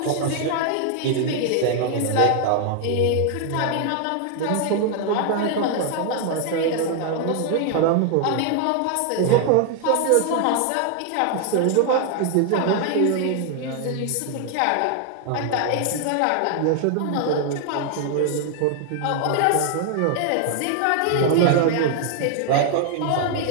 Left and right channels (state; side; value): different; both; correlation 0.00